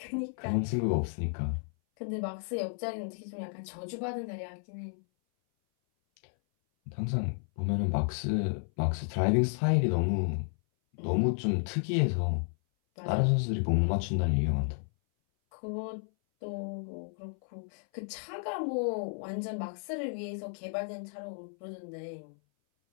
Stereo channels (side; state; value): right; silent; 56 dB below the other